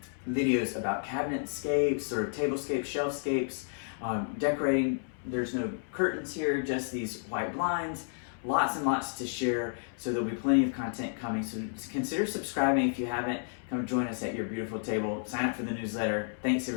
videos about cabinetscapes, sort of tablescapes, shelfscapes, decorating. There's no curtains here, just these white blinds. Lots and lots to share, so there'll be plenty of content coming. So consider subscribing if you haven't. Come join us at Your Beautiful Table. Sign up for the newsletter. Thanks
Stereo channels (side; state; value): right; silent; 57 dB below the other